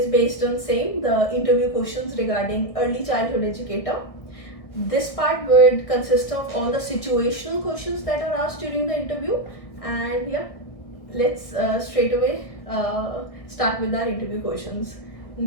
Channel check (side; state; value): right; late; 1.6 ms